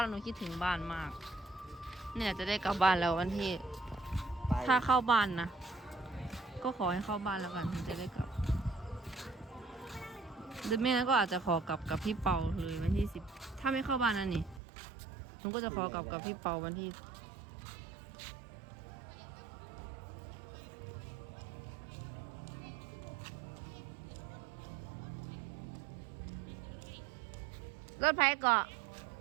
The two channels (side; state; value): left; drops out; at 14.6 s